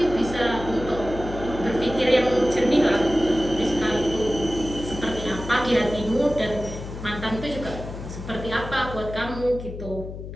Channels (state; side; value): noise; left; hum, 10 dB below the sound